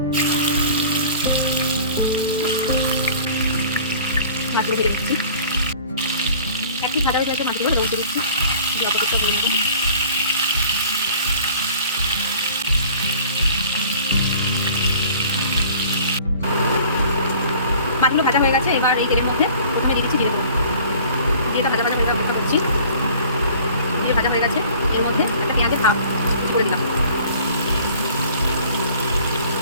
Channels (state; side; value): inverted; both; correlation -0.48